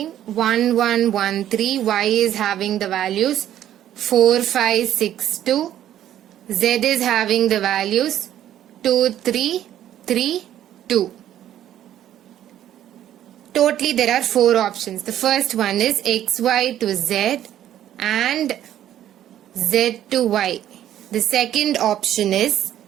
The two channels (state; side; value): quieter; left; 11.6 dB